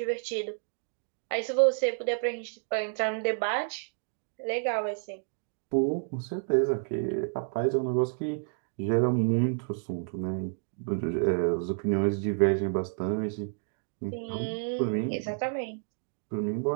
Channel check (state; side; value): silent; left; digital silence